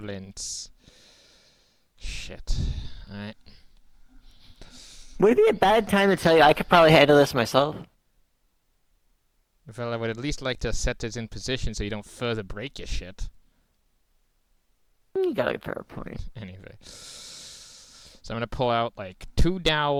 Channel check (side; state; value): both; identical; correlation 1.00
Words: Shit. Alright. Would it be a bad time to tell you I could probably handle this myself? Well, I would at least like to set this in position so you don't further break your shit. You got a fair point. Anyway. So I'm gonna pull out like 2